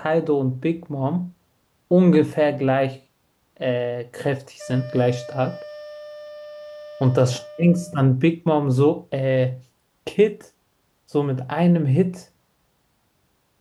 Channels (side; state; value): both; identical; correlation 1.00